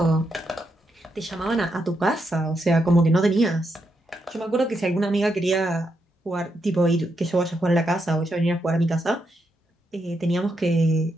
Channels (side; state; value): both; normal; correlation 0.82